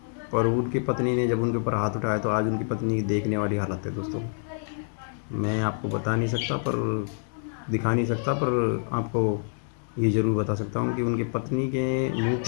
पर उनकी पत्नी ने जब उनके ऊपर हाथ उठाया तो आज उनकी पत्नी की देखने वाली हालत है दोस्तों। मैं आपको बता नहीं सकता, पर दिखा नहीं सकता, पर आपको ये ज़रूर बता सकता हूँ कि उनकी पत्नी के मुंह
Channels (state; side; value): silent; right; 60 dB below the other